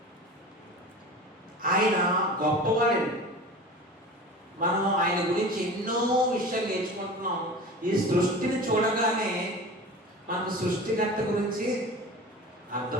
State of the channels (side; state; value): both; normal; correlation 0.35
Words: ఆయన గొప్పవాడండి. మనం ఆయన గురించి ఎన్నో విషయాలు నేర్చుకుంటున్నాం. ఈ సృష్టిని చూడగానే మనకు సృష్టికర్త గురించి